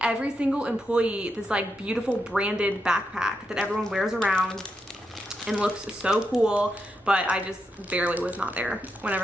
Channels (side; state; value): both; normal; correlation 0.84